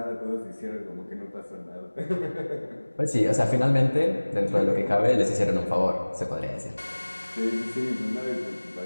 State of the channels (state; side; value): inverted; both; correlation -1.00